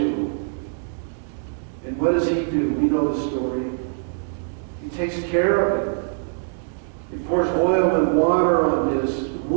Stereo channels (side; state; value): left; silent; digital silence